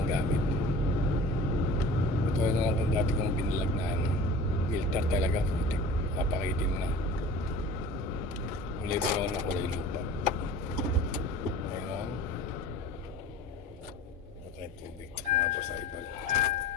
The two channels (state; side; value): normal; both; correlation 0.41